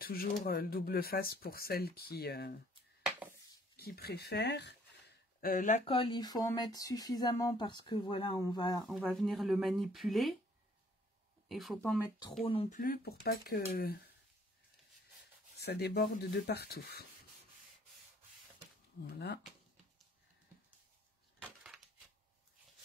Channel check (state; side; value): normal; both; correlation 0.61